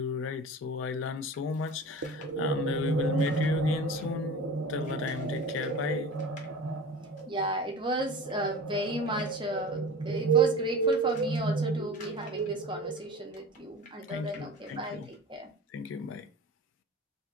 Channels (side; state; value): both; normal; correlation 0.35